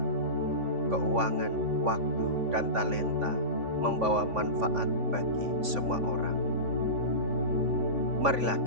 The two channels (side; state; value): left; late; 3.5 ms